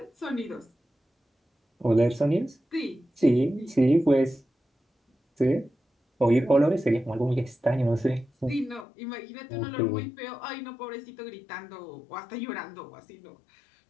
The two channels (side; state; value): right; drops out; at 8.8 s